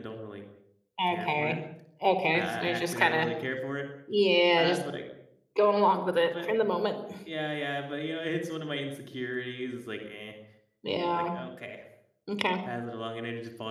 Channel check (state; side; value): identical; both; correlation 1.00